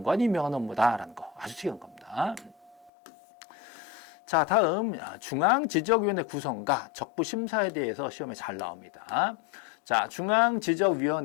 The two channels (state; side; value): drops out; right; at 2.9 s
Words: 임명하는 업무다라는 거 아주 특이한 겁니다. 자, 다음 중앙지적위원회 구성과 적부 심사에 대해서 시험에 잘 나옵니다. 자,